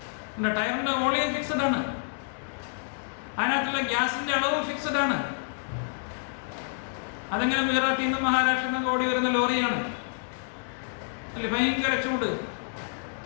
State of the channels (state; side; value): silent; right; digital silence